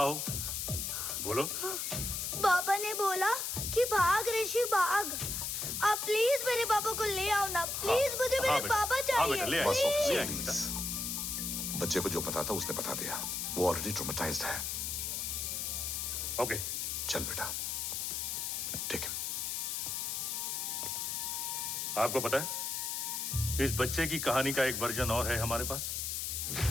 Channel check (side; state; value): left; noise; hiss, 2 dB below the sound